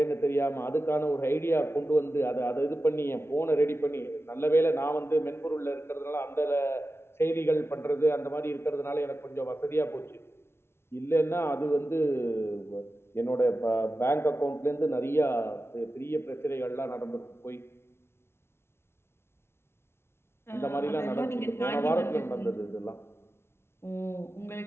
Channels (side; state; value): right; late; 0.12 ms